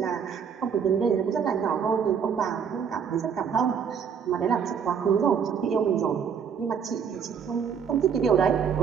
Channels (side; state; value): left; quieter; 7.1 dB